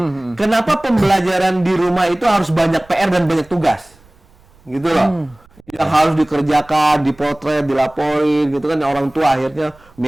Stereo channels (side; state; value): right; noise; rumble, 29 dB below the sound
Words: Kenapa pembelajaran di rumah itu harus banyak PR dan banyak tugas, gitu loh. Yang harus dikerjakan, dipotret, dilaporin, gitu kan. Orang tua akhirnya